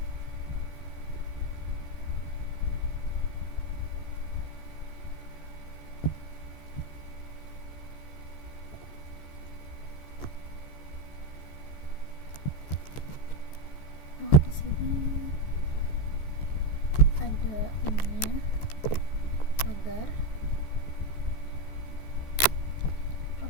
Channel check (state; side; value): late; right; 14 ms